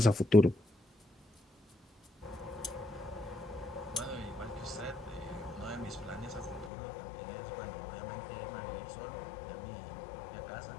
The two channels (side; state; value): right; drops out; at 6.7 s